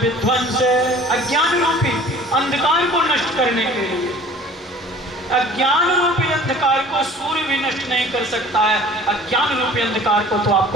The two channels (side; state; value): both; normal; correlation 0.47